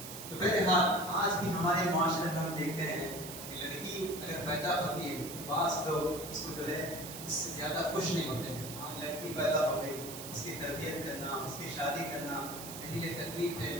تو بہرحال آج بھی ہمارے معاشرے میں ہم دیکھتے ہیں کہ لڑکی اگر پیدا ہوتی ہے بعض لوگ اس کو جو ہے اس سے زیادہ خوش نہیں ہوتے ہیں. لڑکی پیدا ہو گئی، اس کی تربیت کرنا، اس کی شادی کرنا میرے لیے تکلیف ہے،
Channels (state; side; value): noise; right; hiss, 10 dB below the sound